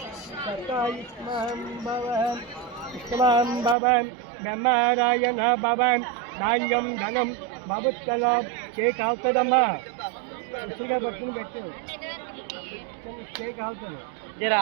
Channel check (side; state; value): left; drops out; at 3.8 s